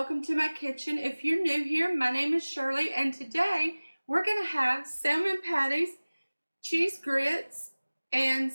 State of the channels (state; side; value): inverted; both; correlation -1.00